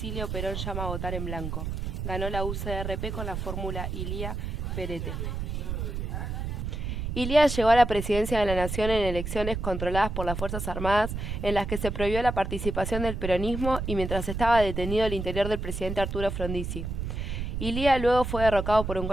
Perón llama a votar en blanco. Ganó la UCRP con la fórmula Ilía-Perete. Ilía llegó a la presidencia de la Nación en elecciones controladas por las Fuerzas Armadas en las que se prohibió la participación del peronismo y mientras estaba detenido el interior del presidente Arturo Frondizi. Ilía luego fue derrocado por un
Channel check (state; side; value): noise; right; rumble, 4 dB below the sound